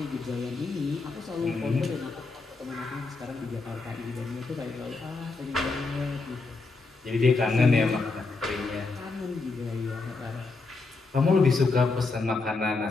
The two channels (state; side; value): quieter; right; 3.8 dB